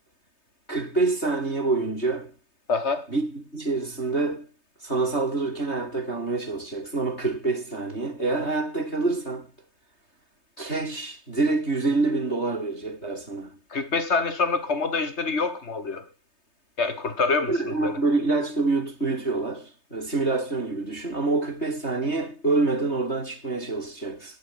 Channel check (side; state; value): right; late; 3.2 ms